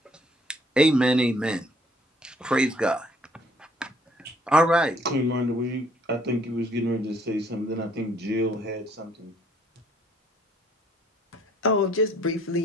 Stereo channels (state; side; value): normal; both; correlation 0.62